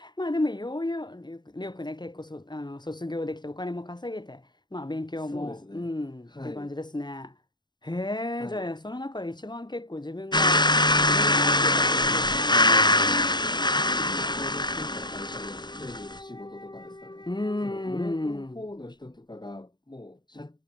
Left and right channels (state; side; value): late; right; 0.21 ms